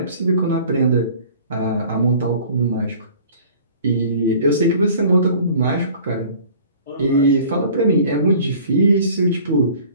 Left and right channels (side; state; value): both; inverted; correlation -0.49